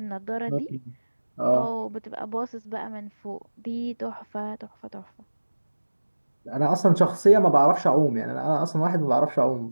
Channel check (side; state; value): both; inverted; correlation -1.00